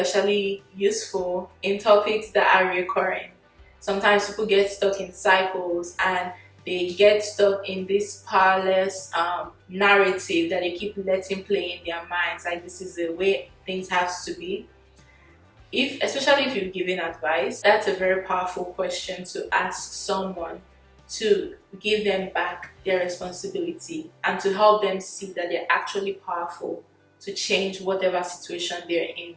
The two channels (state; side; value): identical; both; correlation 1.00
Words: useful in topics that are recurring. Sometimes people get stuck in cycles and they get stuck in this powerless narrative that they keep letting play in their minds, like this is the way things have to be. Especially if you're giving advice, that's a very powerful question to ask someone, to give them back their responsibility and to help them see that they're actually powerful to change whatever situation they're in.